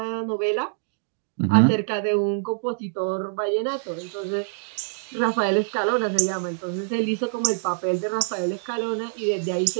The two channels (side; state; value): left; silent; digital silence